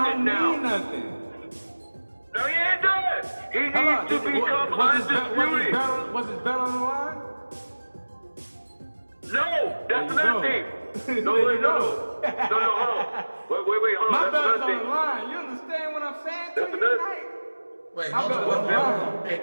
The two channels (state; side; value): inverted; both; correlation -1.00